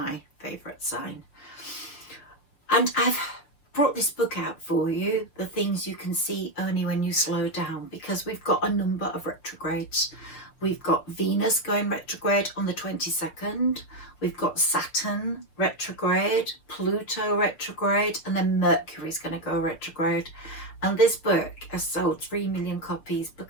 favourite sign. And I've brought this book out for you, The Things You Can See Only When You Slow Down, because we've got a number of retrogrades. We've got Venus going retrograde on the 22nd. We've got Saturn retrograde, Pluto retrograde, and then Mercury's going to go retrograde. And this book has sold 3 million copies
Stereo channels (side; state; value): right; late; 6.1 ms